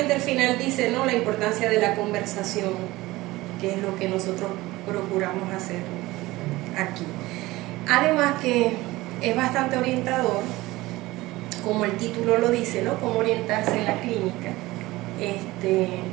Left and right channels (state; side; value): quieter; left; 19.2 dB